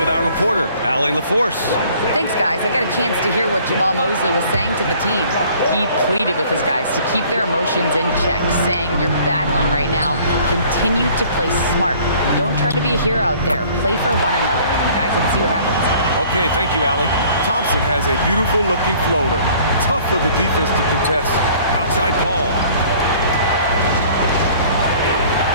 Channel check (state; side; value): inverted; both; correlation -0.54